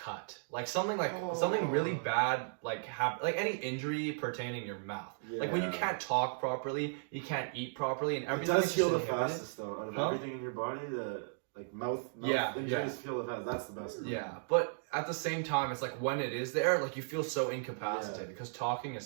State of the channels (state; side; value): silent; left; digital silence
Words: like something really bad, like any injury pertaining your mouth. Like when you can't talk properly, you can't eat properly, and It everything. does is heal the just inhibited. fastest though. Out of Huh? everything in your body, the like mouth Yeah, injuries heal the fastest. That's the best. Yeah, but at the same time, it's like when it is there, like you feel so incapacitated because talking is